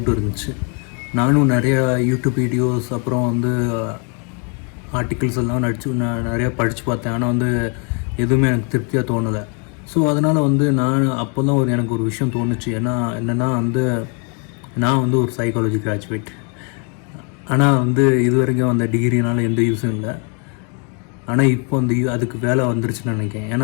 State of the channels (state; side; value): quieter; right; 37.2 dB